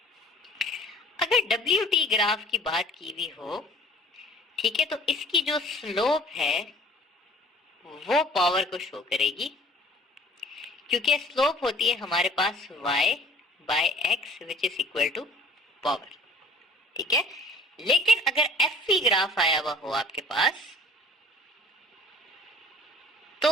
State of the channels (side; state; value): both; normal; correlation 0.50